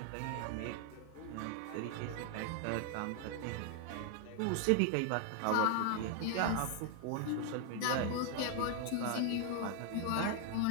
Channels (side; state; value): both; different; correlation 0.00